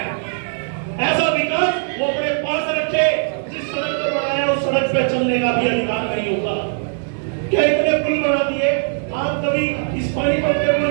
ऐसा विकास वो अपने पास रखे, जिस सड़क पर बनाया उस सड़क पे चलने का भी अधिकार नहीं होगा। क्या इतने पुल बना दिए? आप कभी इस पानीपत के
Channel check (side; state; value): left; silent; 63 dB below the other